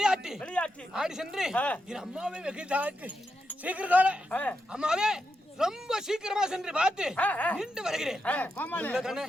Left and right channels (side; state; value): both; normal; correlation 0.86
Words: ஆடி சென்று என் அம்மாவை வெகு சீக்கிரத்தோட அம்மாவே ரொம்ப சீக்கிரமா சென்று பார்த்து நின்று வருகிறேன்.